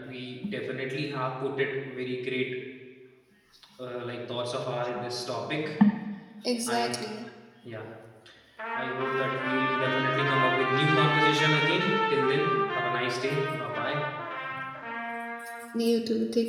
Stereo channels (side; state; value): both; identical; correlation 1.00